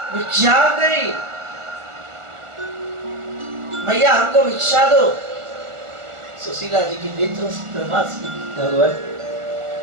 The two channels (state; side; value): late; left; 1.4 ms